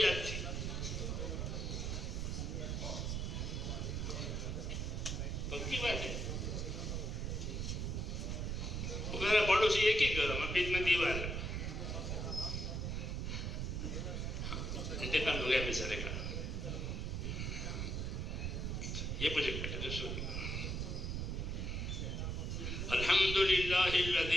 تھی۔ پکی بات ہے، وہ میرا پڑوسی ایک ہی گھر ہے، بیچ میں دیوار ہے۔ انتقال ہو گیا بیچارے کا، یہ مجھے کہتے الحمدللہ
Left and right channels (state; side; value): noise; right; rumble, 1 dB below the sound